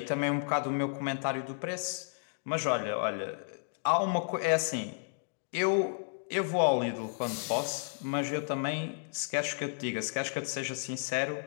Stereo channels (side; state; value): right; silent; digital silence